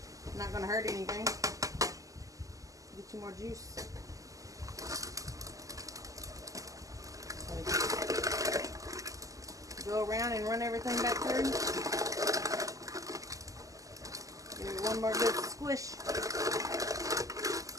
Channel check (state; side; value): late; left; 0.16 ms